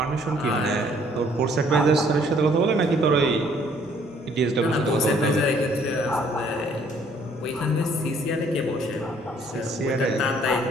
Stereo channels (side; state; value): both; normal; correlation 0.62